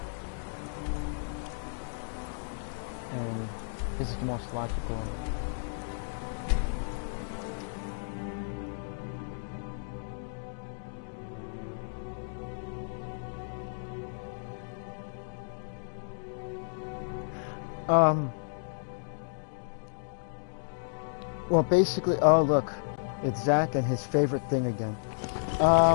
And this is the most logical. Well, basically, oh look, it's Zach and his favorite thing again.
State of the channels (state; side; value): silent; right; digital silence